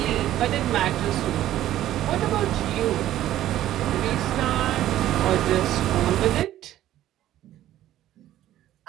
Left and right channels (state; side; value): quieter; left; 13.2 dB